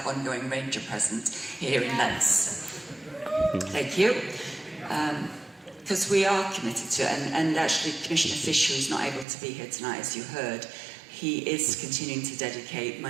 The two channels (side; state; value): left; drops out; at 9.2 s